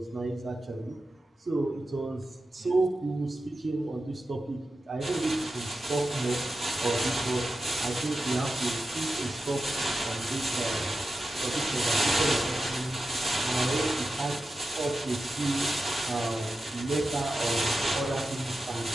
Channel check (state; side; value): normal; both; correlation 0.92